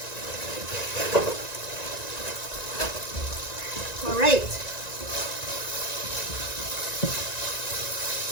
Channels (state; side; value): late; right; 1.9 ms